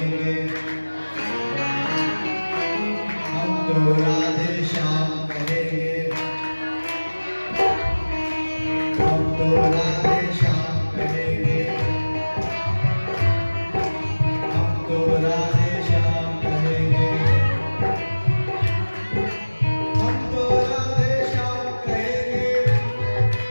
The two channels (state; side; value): inverted; both; correlation -1.00